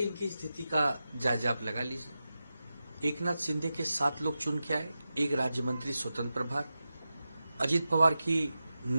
इनकी स्थिति का जायजा आप लगा लीजिए। एकनाथ शिंदे के 7 लोग चुन के आए, एक राज्य मंत्री स्वतंत्र प्रभार। अजीत पवार की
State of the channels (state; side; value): inverted; both; correlation -0.92